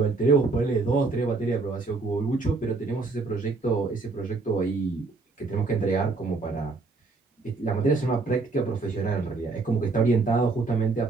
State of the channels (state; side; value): quieter; left; 3.9 dB